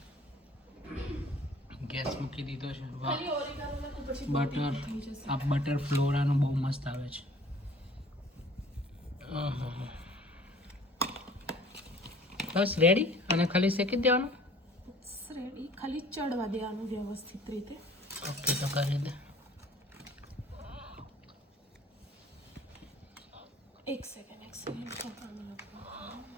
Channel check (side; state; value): both; normal; correlation 0.51